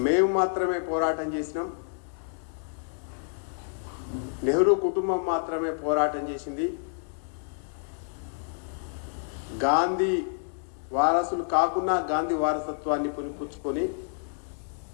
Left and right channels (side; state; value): right; silent; 58 dB below the other